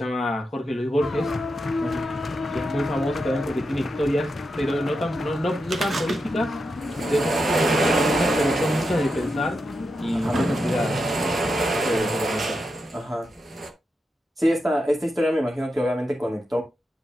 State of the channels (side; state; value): both; normal; correlation 0.87